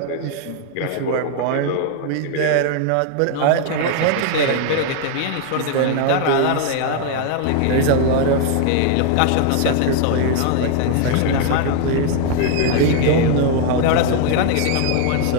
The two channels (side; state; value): both; different; correlation 0.00